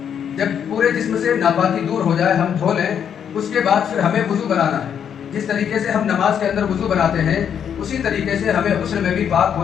جب پورے جسم سے ناپاکی دور ہو جائے ہم دھو لیں. اس کے بعد پھر ہمیں وضو بنانا ہے. جس طریقے سے ہم نماز کے اندر وضو بناتے ہیں اسی طریقے سے ہمیں غسل میں بھی پاک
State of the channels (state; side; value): quieter; right; 8.3 dB